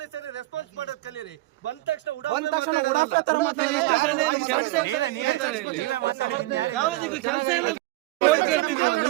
ರೆಸ್ಪಾನ್ಸ್ ಮಾಡೋದು ಕಲೀರಿ. ಬಂದ ತಕ್ಷಣ ನೀವೇ ಮಾತಾಡಿದ್ದೀನಿ ಕೆಲಸ ಇಲ್ಲ.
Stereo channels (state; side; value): quieter; left; 19.4 dB